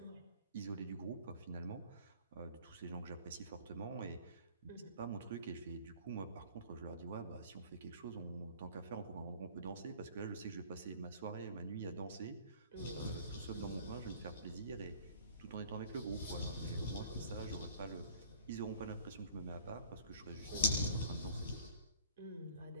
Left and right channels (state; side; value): inverted; both; correlation -0.49